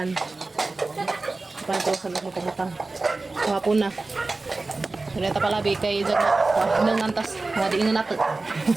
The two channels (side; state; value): left; quieter; 3.4 dB